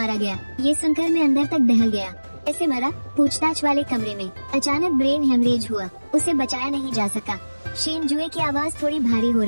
गया, ये सुनकर मैं अंदर तक दहल गया। ऐसे मरा? पूछताछ वाले कमरे में अचानक ब्रेन हेमरेज हुआ। उसे बचाया नहीं जा सका। शेन जुए की आवाज थोड़ी भारी हो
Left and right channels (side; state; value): both; inverted; correlation -1.00